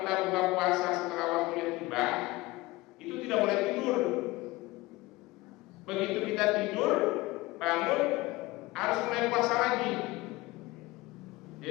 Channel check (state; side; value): quieter; right; 20.3 dB